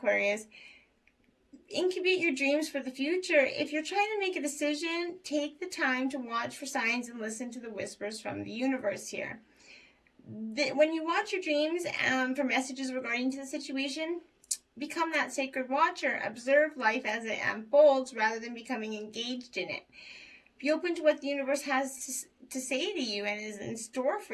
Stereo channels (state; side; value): identical; both; correlation 1.00